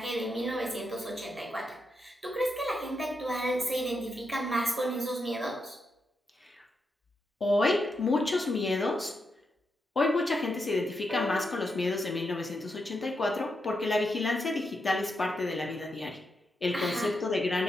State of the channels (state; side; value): normal; both; correlation 0.84